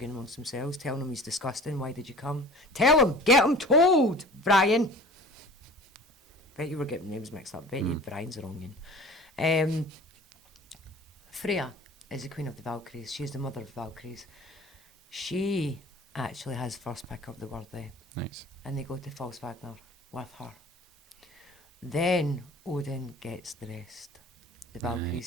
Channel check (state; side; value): normal; both; correlation 0.43